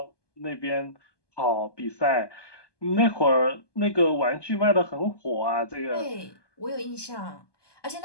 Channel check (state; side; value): late; right; 1.2 ms